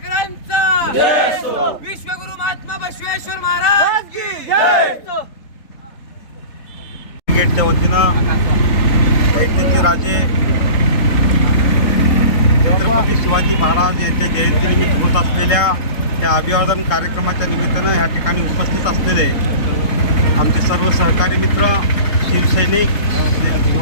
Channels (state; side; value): late; right; 3.7 ms